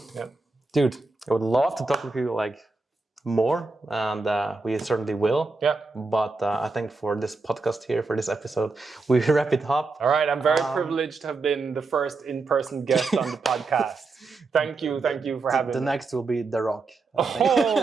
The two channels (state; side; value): quieter; left; 3.8 dB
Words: Yeah. Dude, I would love to talk with you more, and we certainly will. Yeah. But I think for this podcast here, for this episode, we wrap it up. All right. I'm very privileged to have been the first in-person guest on the podcast. Thank you for having me. The next will be The Rock.